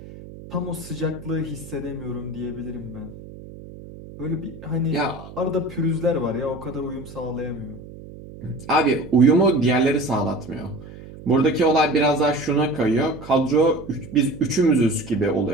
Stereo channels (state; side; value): noise; right; hum, 16 dB below the sound